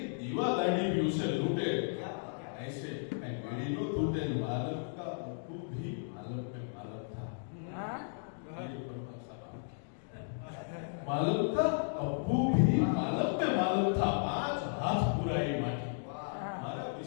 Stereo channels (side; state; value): right; silent; digital silence